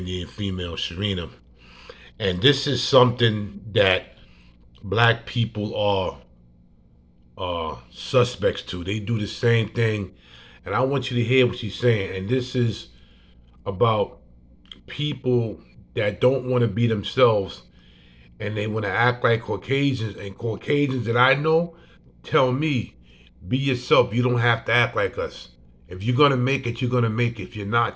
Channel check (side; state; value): both; identical; correlation 1.00